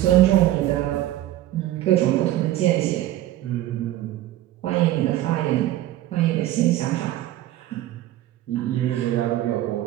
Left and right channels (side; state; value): left; quieter; 14.3 dB